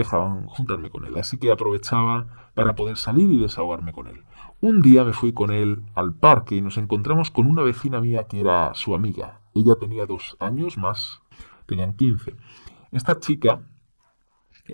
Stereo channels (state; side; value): inverted; both; correlation -1.00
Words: juntarme con él. Así que aprovechaba para poder salir y desahogarme con él. Un día me fui con él al parque y nos encontramos con una vecina mía que era su amiga. Ella tenía 2 años más, tenían 15. Esta chica